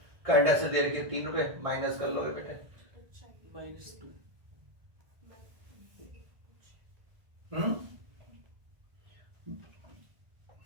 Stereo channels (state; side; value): late; left; 1.5 ms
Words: करंट एसेट दे रखी है 3 रुपए, माइनस कर लोगे बेटे -2।